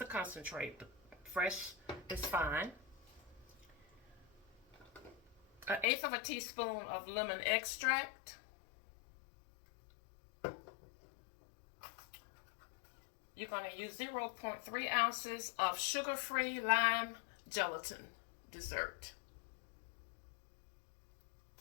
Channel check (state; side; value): drops out; right; at 5.9 s